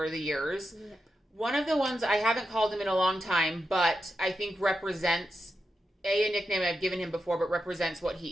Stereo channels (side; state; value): both; normal; correlation 0.88